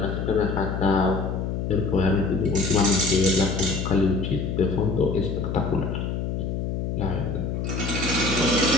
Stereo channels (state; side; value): noise; left; hum, 2 dB below the sound